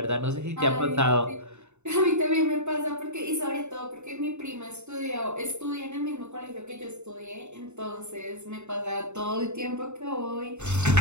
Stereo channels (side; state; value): left; late; 0.82 ms